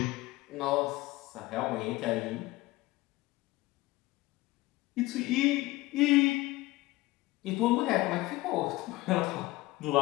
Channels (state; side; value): quieter; right; 19.5 dB